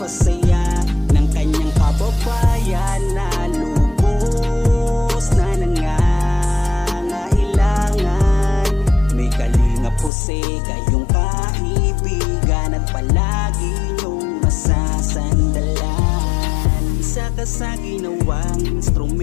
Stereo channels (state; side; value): drops out; right; at 10.1 s